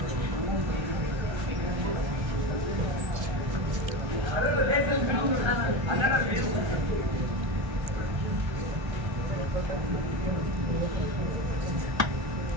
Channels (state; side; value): late; left; 1.3 ms